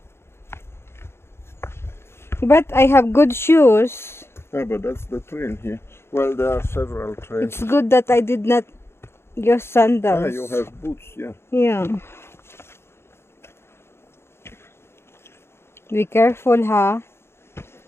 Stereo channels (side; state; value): right; late; 0.12 ms